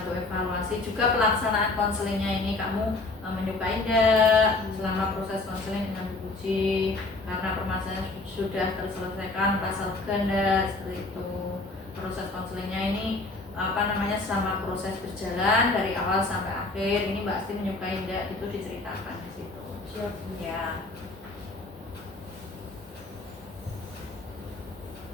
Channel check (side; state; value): right; quieter; 3.3 dB